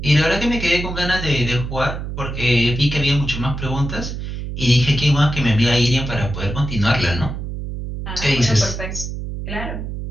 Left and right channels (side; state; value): right; noise; hum, 6 dB below the sound